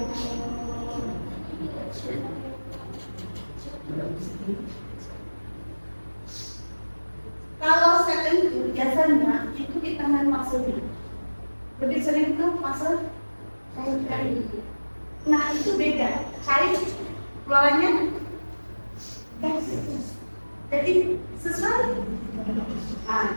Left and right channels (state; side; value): inverted; both; correlation -1.00